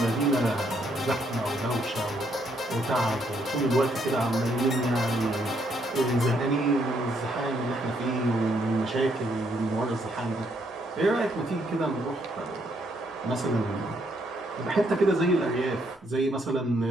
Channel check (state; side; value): normal; both; correlation 0.73